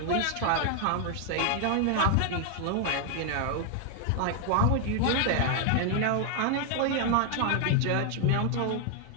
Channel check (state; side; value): different; both; correlation 0.00